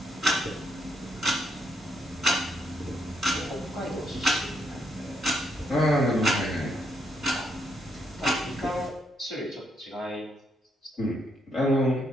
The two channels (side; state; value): both; normal; correlation 0.75